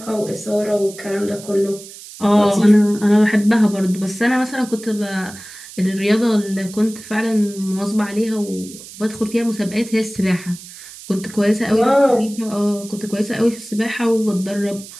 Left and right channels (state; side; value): noise; right; hiss, 16 dB below the sound